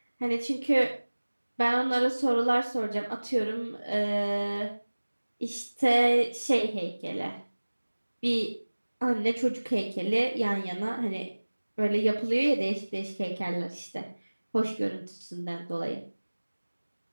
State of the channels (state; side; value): inverted; both; correlation -1.00